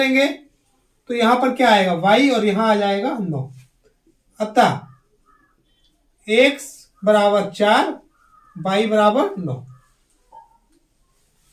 तो यहां पर क्या आएगा? y, और यहां आ जाएगा 9। अतः x बराबर 4, y बराबर 9।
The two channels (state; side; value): identical; both; correlation 1.00